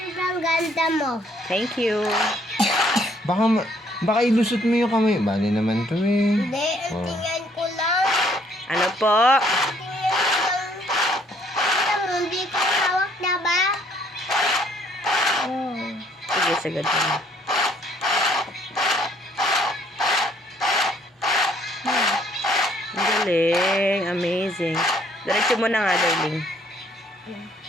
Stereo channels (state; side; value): normal; both; correlation 0.64